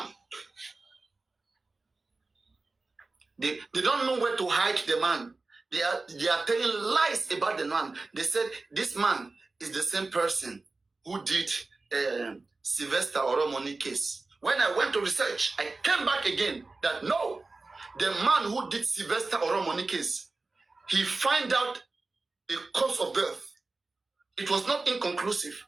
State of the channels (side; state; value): left; quieter; 3.5 dB